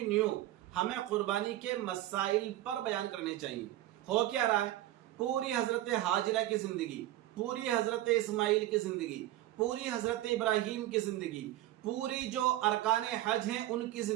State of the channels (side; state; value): left; quieter; 14.8 dB